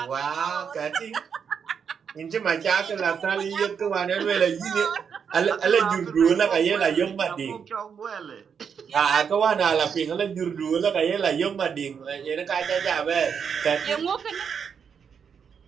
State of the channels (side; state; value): left; quieter; 6.9 dB